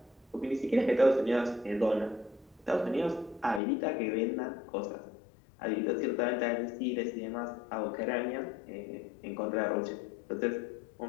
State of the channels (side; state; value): right; drops out; at 3.6 s